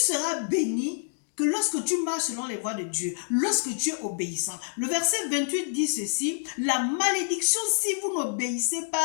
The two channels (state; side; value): silent; right; digital silence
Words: seras béni que lorsque tu marches selon les voies de Dieu, lorsque tu es obéissant. Le verset 28 dit ceci, la malédiction si vous n'obéissez